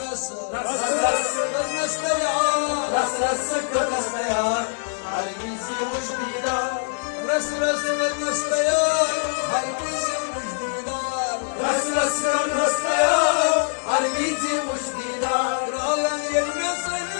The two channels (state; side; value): silent; right; 63 dB below the other